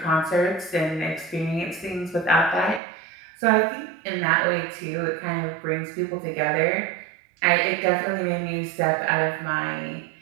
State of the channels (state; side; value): drops out; left; at 2.8 s